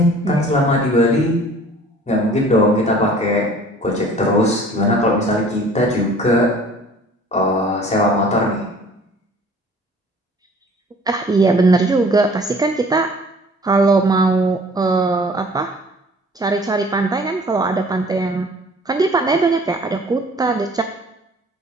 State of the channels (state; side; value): normal; both; correlation 0.50